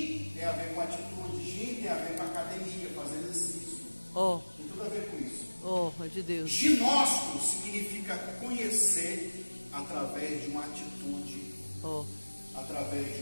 tem a ver com atitude. Gin tem a ver com academia, fazer exercício. Oh, Tem tudo a ver com isso. oh, é de Deus. Ginóstico significa conhecer através de uma atitude, Oh, através de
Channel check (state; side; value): inverted; both; correlation -1.00